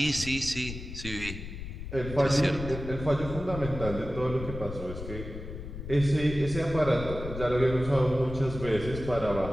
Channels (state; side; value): noise; left; rumble, 9 dB below the sound